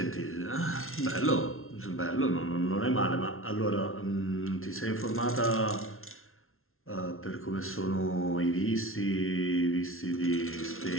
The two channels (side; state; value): right; late; 0.62 ms